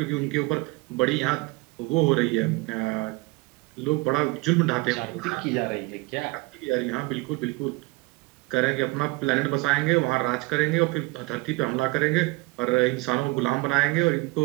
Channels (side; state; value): left; quieter; 23.6 dB